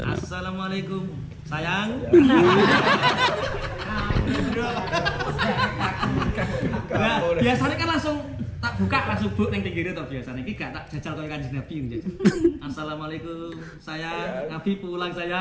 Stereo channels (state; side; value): identical; both; correlation 1.00